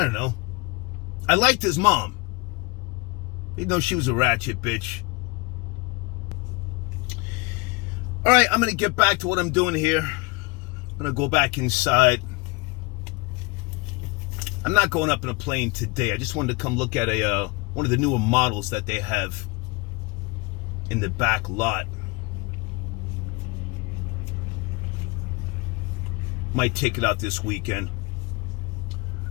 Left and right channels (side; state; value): right; quieter; 25.9 dB